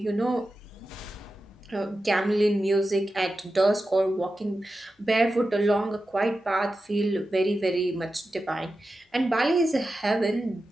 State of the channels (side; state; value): both; normal; correlation 0.92